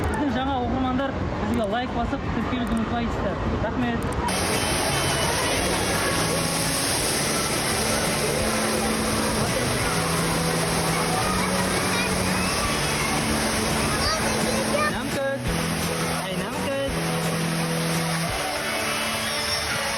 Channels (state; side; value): identical; both; correlation 1.00